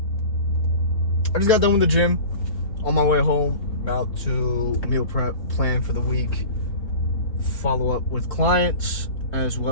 just got done with the gym. On my way home, about to meal prep, plan for the week, follow up with clients as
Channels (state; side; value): late; right; 3.1 ms